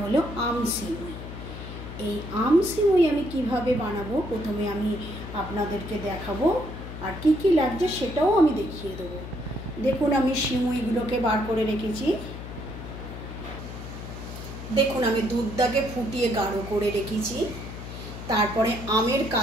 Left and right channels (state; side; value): noise; left; hum, 10 dB below the sound